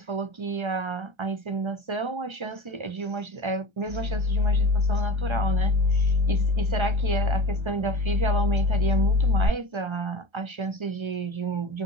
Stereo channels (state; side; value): late; left; 1.3 ms